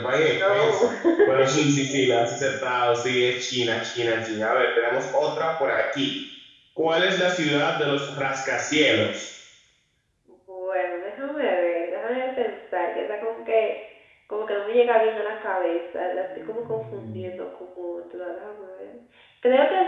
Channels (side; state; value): both; identical; correlation 1.00